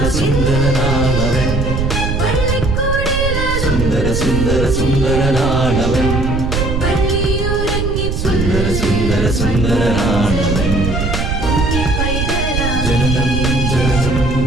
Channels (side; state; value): right; noise; rumble, 1 dB below the sound